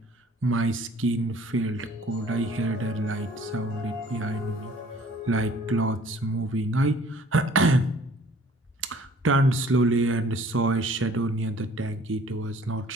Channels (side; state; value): both; normal; correlation 0.53